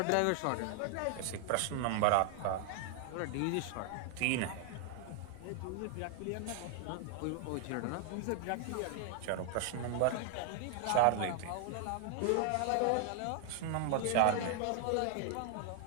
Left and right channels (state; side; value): different; both; correlation 0.00